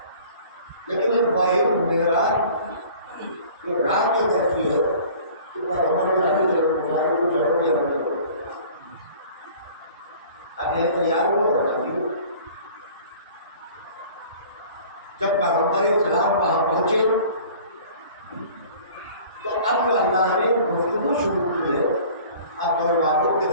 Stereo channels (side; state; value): both; inverted; correlation -0.47